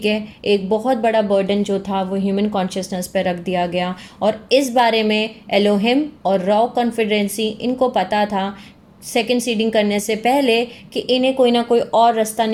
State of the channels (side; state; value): both; identical; correlation 1.00